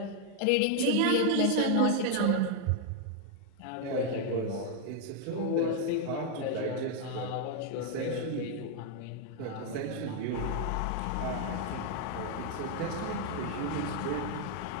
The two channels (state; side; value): different; both; correlation 0.00